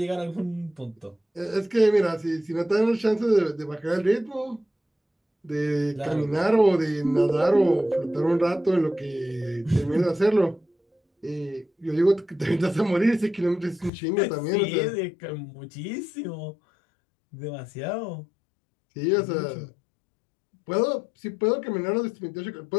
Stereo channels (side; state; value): right; drops out; at 13.9 s